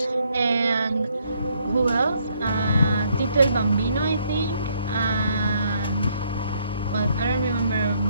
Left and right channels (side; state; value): both; inverted; correlation -0.69